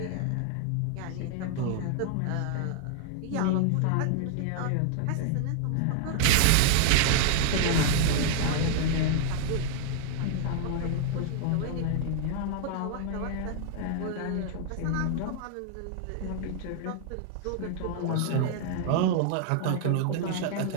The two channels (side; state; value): both; different; correlation -0.01